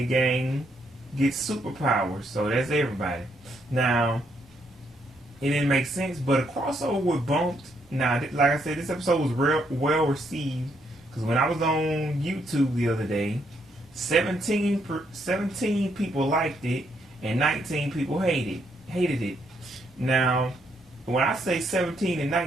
gang get superpowers. So that's everybody. Now, it didn't make sense, but a crossover with Bunkd. Now, like I said, this episode was well received, because when I was on YouTube the other day, 17 people liked it and 19 people hated it. Now, when I say 17 and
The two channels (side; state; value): both; normal; correlation 0.74